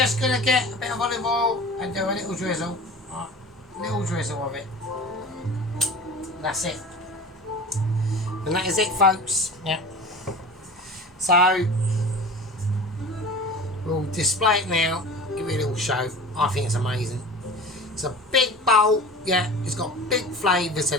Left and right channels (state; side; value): normal; both; correlation 0.37